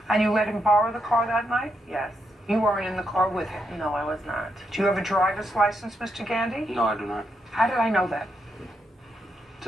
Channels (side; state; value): both; normal; correlation 0.81